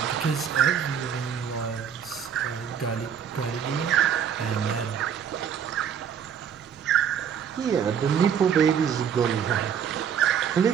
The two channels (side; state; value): left; quieter; 8.0 dB